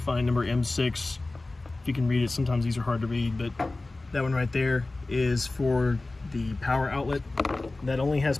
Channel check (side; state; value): right; quieter; 3.1 dB